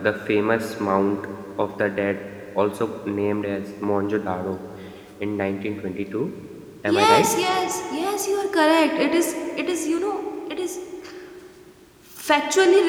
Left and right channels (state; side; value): identical; both; correlation 1.00